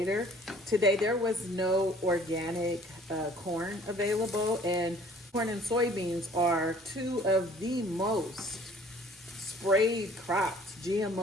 Today there was no organic corn available, and corn and soybeans are 2 of the most sprayed crops,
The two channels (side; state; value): both; normal; correlation 0.53